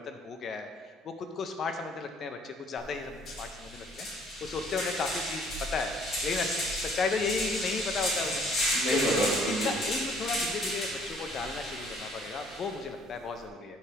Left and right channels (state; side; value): normal; both; correlation 0.60